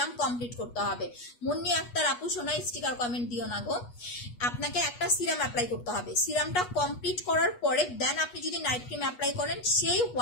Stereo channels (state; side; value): late; right; 8.3 ms